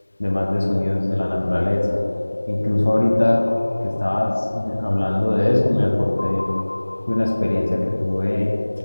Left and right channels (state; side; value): inverted; both; correlation -1.00